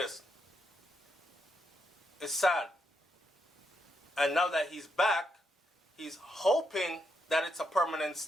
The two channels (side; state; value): both; normal; correlation 0.80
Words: It's sad. And now that he's back, he's hoping that it's a permanent